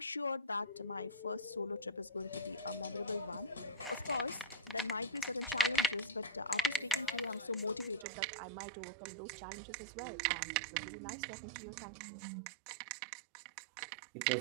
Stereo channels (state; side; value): drops out; left; at 8.1 s